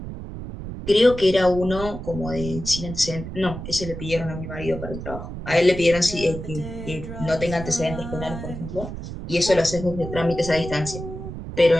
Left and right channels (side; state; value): right; noise; rumble, 9 dB below the sound